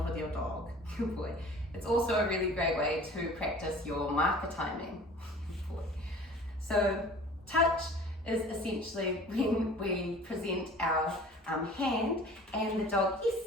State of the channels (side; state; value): both; normal; correlation 0.45